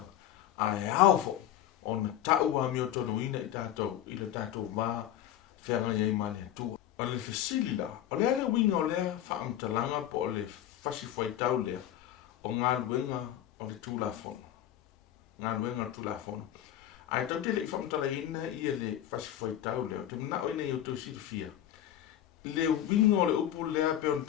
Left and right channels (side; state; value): right; quieter; 11.7 dB